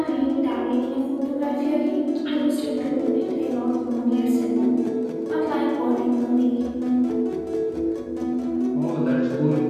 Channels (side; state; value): both; identical; correlation 1.00